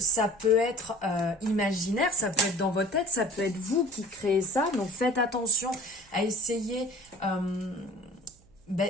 peut être imaginaire, ça peut être dans votre tête, ça peut être vous qui créez ça. Donc faites attention à essayer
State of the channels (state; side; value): noise; right; hum, 29 dB below the sound